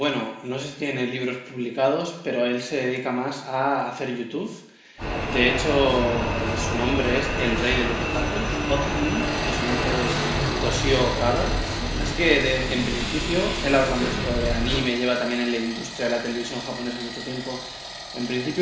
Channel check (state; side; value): identical; both; correlation 1.00